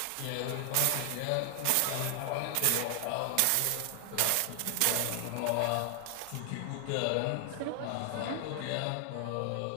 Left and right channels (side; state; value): both; different; correlation 0.00